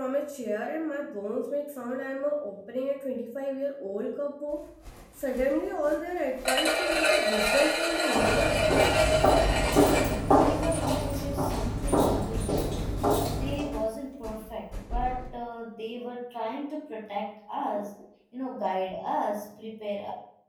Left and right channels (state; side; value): identical; both; correlation 1.00